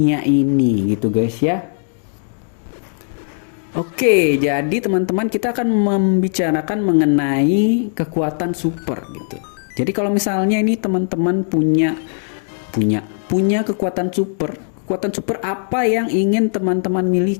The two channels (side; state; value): right; silent; digital silence